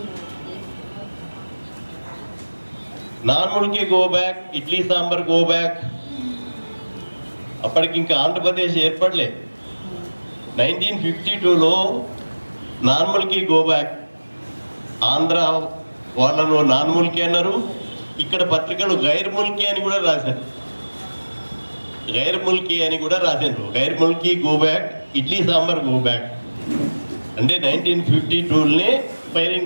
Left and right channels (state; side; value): inverted; both; correlation -1.00